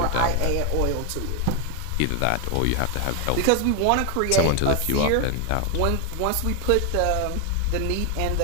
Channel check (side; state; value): both; different; correlation 0.01